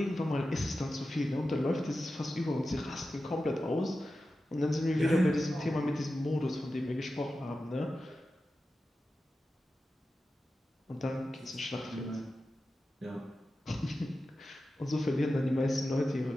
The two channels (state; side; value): normal; both; correlation 0.93